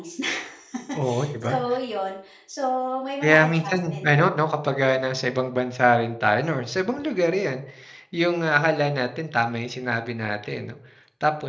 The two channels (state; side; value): identical; both; correlation 1.00